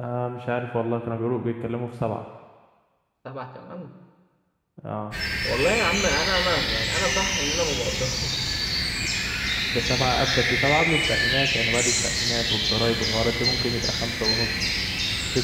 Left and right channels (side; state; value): both; identical; correlation 1.00